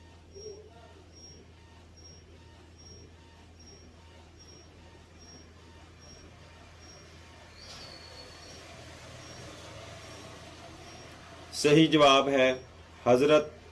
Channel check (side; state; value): both; identical; correlation 1.00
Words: صحیح جواب ہے حضرت